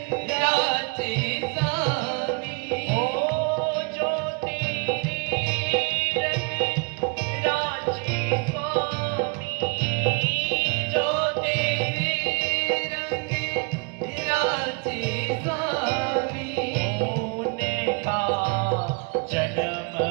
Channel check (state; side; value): quieter; left; 31.6 dB